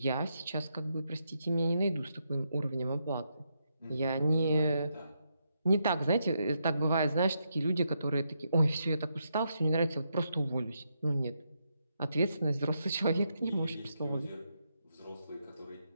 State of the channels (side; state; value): both; inverted; correlation -0.81